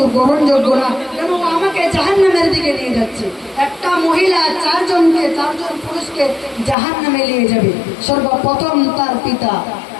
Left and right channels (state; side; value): drops out; right; at 6.8 s